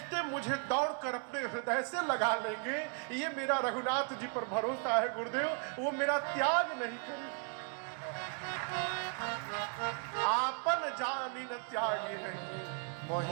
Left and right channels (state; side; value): quieter; left; 37.1 dB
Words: मुझे दौड़कर अपने हृदय से लगा लेंगे। ये मेरा रघुनाथ जी पर भरोसा है गुरुदेव, वो मेरा त्याग नहीं करेंगे। आपन जानी न त्यागी है,